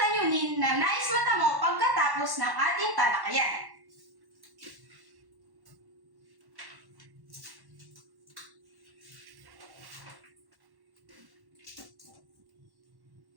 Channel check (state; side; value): late; left; 1.1 ms